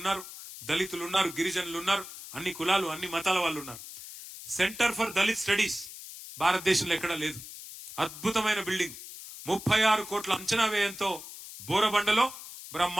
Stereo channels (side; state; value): left; noise; hiss, 13 dB below the sound